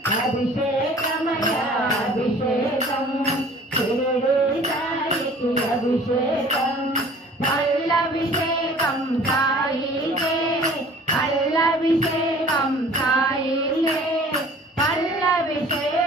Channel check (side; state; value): both; normal; correlation 0.49